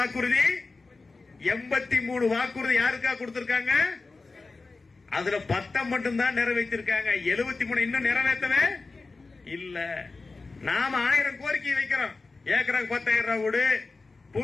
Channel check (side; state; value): right; quieter; 3.8 dB